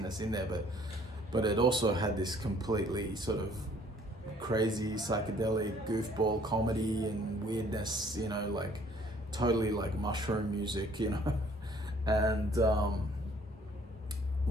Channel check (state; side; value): normal; both; correlation 0.59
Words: in there, but it also had this completely sort of crazy psychedelic goofball comedy and weirdness, like totally like mushroom music, and